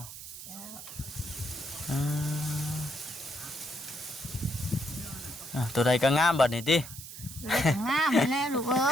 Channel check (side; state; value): right; noise; hiss, 12 dB below the sound